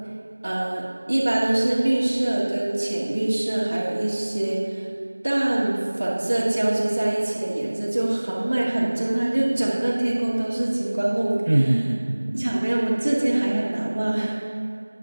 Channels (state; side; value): inverted; both; correlation -1.00